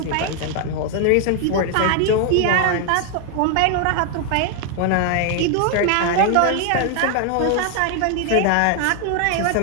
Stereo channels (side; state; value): both; different; correlation 0.00